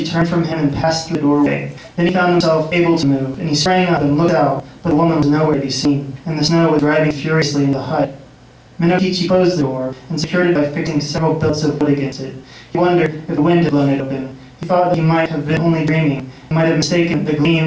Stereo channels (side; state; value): both; identical; correlation 1.00